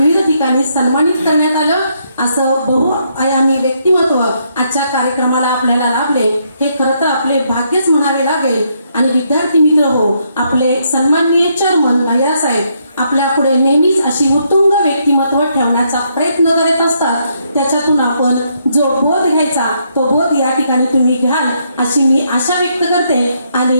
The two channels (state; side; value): inverted; both; correlation -0.75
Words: ठिकाणी सन्मानित करण्यात आलं. असं बहुआयामी व्यक्तिमत्व आजच्या कार्यक्रमाला आपल्याला लाभले, हे खरं तर आपले भाग्यच म्हणावे लागेल. आणि विद्यार्थी मित्र हो, आपले सन्माननीय चेअरमन भैयासाहेब आपल्या पुढे नेहमीच अशी उत्तुंग व्यक्तिमत्व ठेवण्याचा प्रयत्न करत असतात. त्याच्यातून आपण जो बोध घ्यायचा तो बोध या ठिकाणी तुम्ही घ्याल अशी मी आशा व्यक्त करते